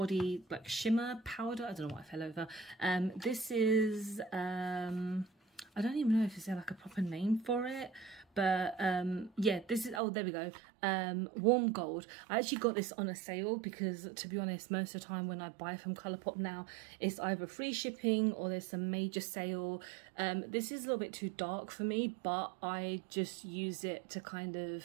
like shimmer powder. I don't know what I fell over. This is I don't even know if there's like a proper name for it, but yeah, this is, oh, there we go, Warm Gold. I actually got this on a sale because, to be honest, most of the time when I buy from Colourpop now, it's either free shipping or there's some major sale. This is a little bit too dark for me, but I just use it to kind of,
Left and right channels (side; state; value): left; drops out; at 10.0 s